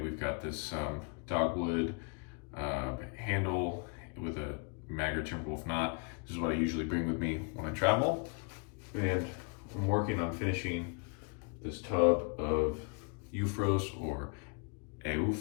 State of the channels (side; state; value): right; quieter; 35.4 dB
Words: got this Dogwood handle with a Maggard Timberwolf knot. This is what I usually bring with me when I travel. And I'm working on finishing this tub of Eufros, or